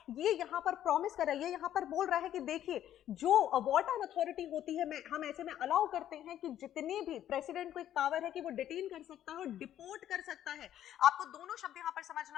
ये यहां पर प्रॉमिस कर रहा है, ये यहां पर बोल रहा है कि देखिए, जो वार्टन अथॉरिटी होती है, हम ऐसे में अलाउ करते हैं कि जितने भी प्रेसिडेंट को एक पावर है कि वो डिटेन कर सकता है और डिपोर्ट कर सकता है। आपको दोनों शब्द यहां पर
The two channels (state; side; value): quieter; right; 11.5 dB